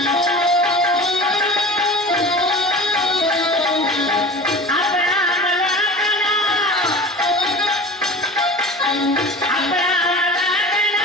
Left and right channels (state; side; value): normal; both; correlation 0.36